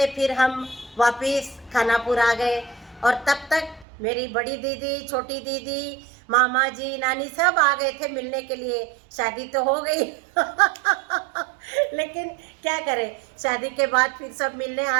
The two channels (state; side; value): drops out; left; at 3.9 s